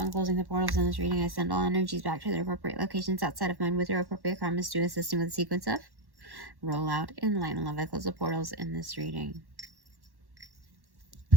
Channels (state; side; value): late; left; 1.1 ms